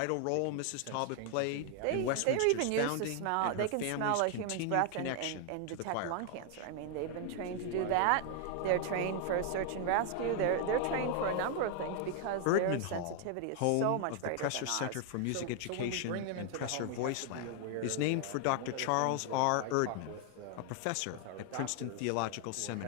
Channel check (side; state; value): both; different; correlation 0.00